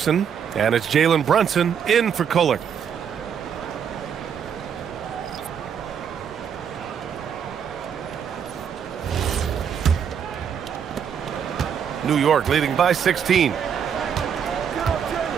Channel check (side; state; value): left; quieter; 7.8 dB